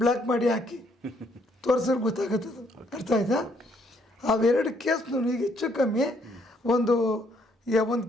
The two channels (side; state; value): both; normal; correlation 0.69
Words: ಮಾಡಿ ಹಾಕಿ ತೋರಿಸಿದ್ರೆ ಗೊತ್ತಾಗುತ್ತದು. ಅರ್ಥ ಆಯ್ತಾ? ಅವೆರಡು ಕೇಸ್ನು ಈಗ ಹೆಚ್ಚು ಕಮ್ಮಿ ಒಂದು